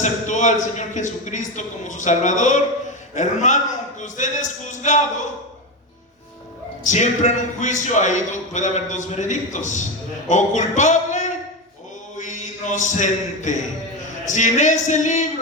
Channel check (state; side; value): normal; both; correlation 0.15